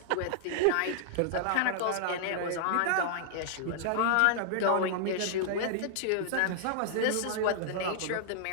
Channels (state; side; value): different; both; correlation -0.01